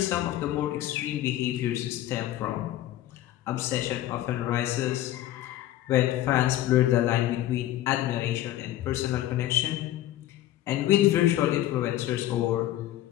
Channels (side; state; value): right; quieter; 13.9 dB